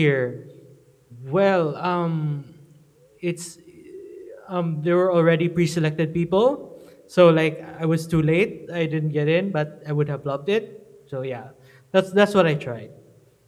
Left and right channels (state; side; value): identical; both; correlation 1.00